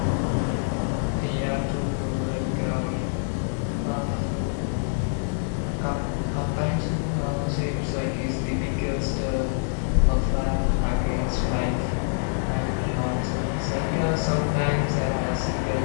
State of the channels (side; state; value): right; silent; 60 dB below the other